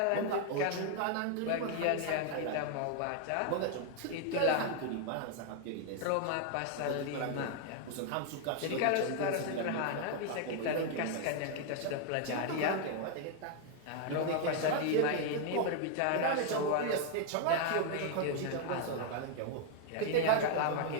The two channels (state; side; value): different; both; correlation 0.00